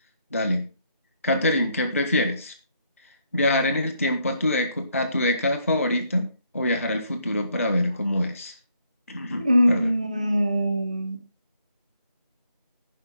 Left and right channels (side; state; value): both; inverted; correlation -0.72